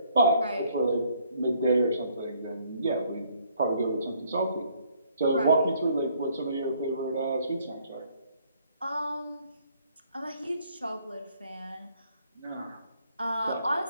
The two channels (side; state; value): both; inverted; correlation -0.65